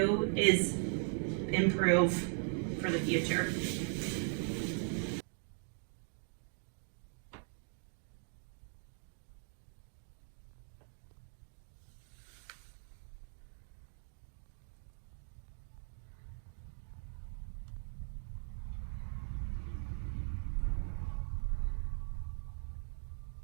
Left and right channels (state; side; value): silent; left; 51 dB below the other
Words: is improve for the future.